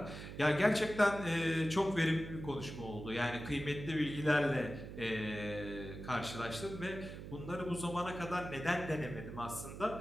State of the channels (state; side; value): noise; right; hum, 10 dB below the sound